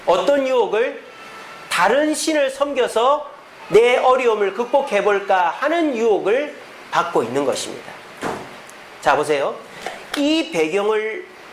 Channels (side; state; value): both; identical; correlation 1.00